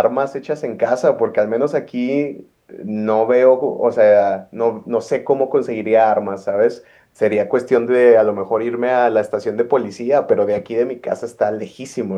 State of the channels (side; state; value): both; identical; correlation 1.00